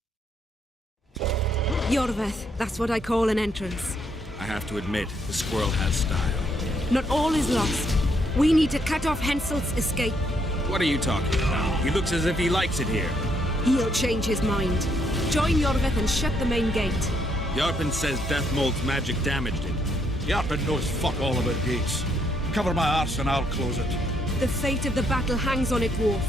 Jorveth, that's what I call an entrance. I have to admit, the squirrel has style. Not all is lost. We need to cut off Henselt's escape. What are you talking about? He looks as if he likes it here. He'll change his mind. Join Jorveth and shut the main gate. Yarpen says Deathmold's magic damaged it. Yarpen knows fuck all about gates. Cover my arse and I'll close it. The fate of the battle hangs on it, Dwarf.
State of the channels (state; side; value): normal; both; correlation 0.73